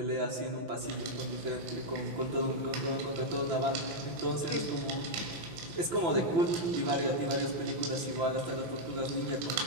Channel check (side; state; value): left; late; 5.9 ms